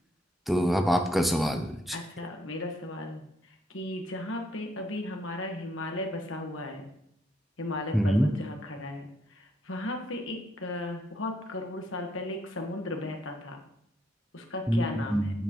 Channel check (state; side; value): normal; both; correlation 0.74